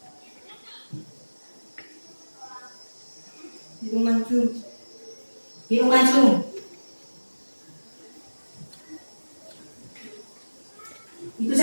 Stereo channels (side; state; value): both; inverted; correlation -1.00